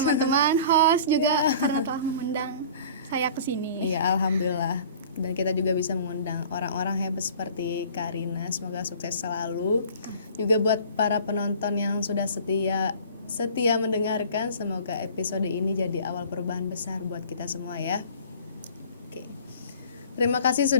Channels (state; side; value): inverted; both; correlation -0.46